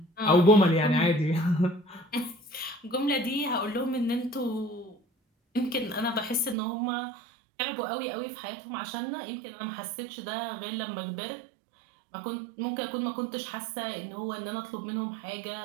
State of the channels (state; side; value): drops out; left; at 6.6 s